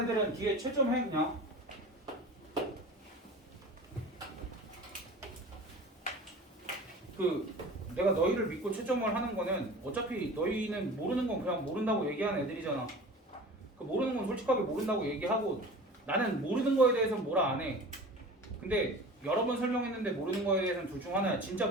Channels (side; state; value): both; normal; correlation 0.38